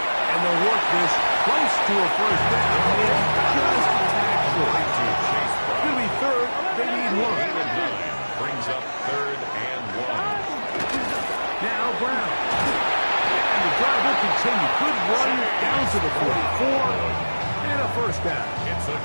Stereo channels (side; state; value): both; inverted; correlation -1.00